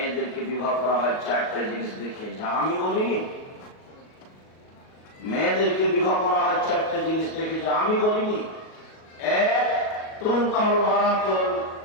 বিবাহ করা হয় 4টে জিনিস দেখে। যা আমি বলিনি, মেয়েদেরকে বিবাহ করা হয় 4টে জিনিস দেখে, যা আমি বলিনি। এক, তুনকাহুল মারাতু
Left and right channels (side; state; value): right; late; 38 ms